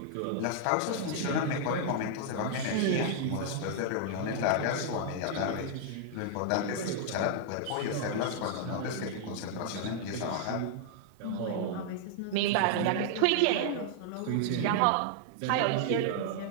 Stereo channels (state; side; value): different; both; correlation -0.01